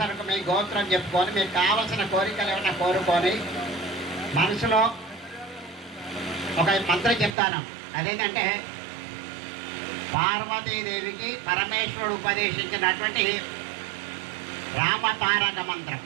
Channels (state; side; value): drops out; left; at 7.4 s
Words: మీ గోత్రం చెప్పుకొని మీకు కావలసిన కోరికలు ఏమైనా కోరుకొని మనసులో ఒక మంత్రం చెప్తాను. అదేంటంటే పార్వతీదేవికి పరమేశ్వరుడు ఉపదేశించినటువంటి రామతారక మంత్రం.